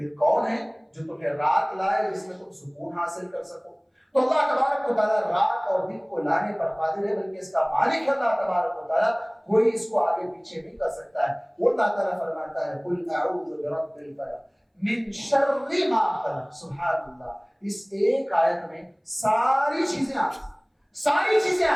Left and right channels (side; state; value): both; identical; correlation 1.00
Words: کون ہے جو تمہیں رات لائے جس میں تم سکون حاصل کر سکو؟ تو اللہ تبارک و تعالیٰ رات اور دن کو لانے پر قادر ہے، بلکہ اس کا مالک اللہ تبارک و تعالیٰ، کوئی اس کو آگے پیچھے نہیں کر سکتا ہے. وہ اللہ تعالیٰ فرماتا ہے قل اعوذ برب الفلق من شر ما خلق. سبحان اللہ، اس ایک آیت میں ساری چیزیں آ گئی، ساری چیزیں